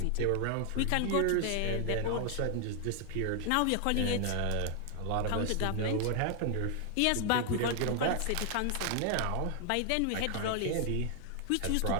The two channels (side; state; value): both; different; correlation 0.00